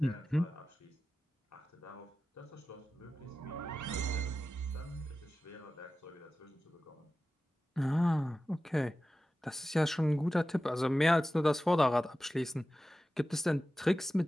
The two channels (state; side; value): normal; both; correlation 0.94